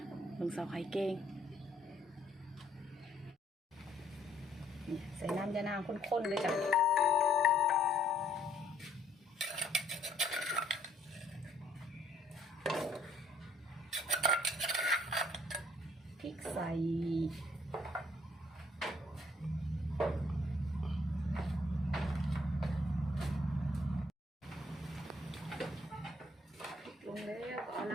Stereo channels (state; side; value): normal; both; correlation 0.64